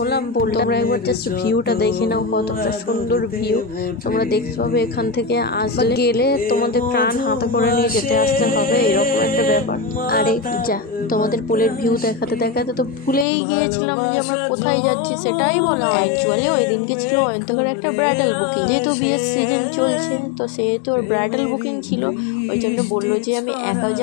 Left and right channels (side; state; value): right; drops out; at 13.2 s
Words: তোমরা একবার জাস্ট ভিউটা দেখে নাও, কতটা সুন্দর ভিউ তোমরা দেখতে পাবে। এখান থেকে আসলে গেলে তোমাদের প্রাণ হাতে করে নিয়ে যেতে আসতে হবে, এরকম একটা ব্যাপার। আরে যা, তোমাদের পোলের ভিউ দেখাতে দেখাতে তো ভুলেই গিয়েছিলাম যে আমরা কোথায় যাচ্ছি সেটাই বলা। অ্যাকচুয়ালি ওই দিনকে ছিল অন্তকের একটা ব্রাইডাল বুকিং, যেহেতু বিয়ের সিজন চলছে তো সেহেতু ওর ব্রাইডাল বুকিং ছিল, ওই জন্য বললো যে আমি একা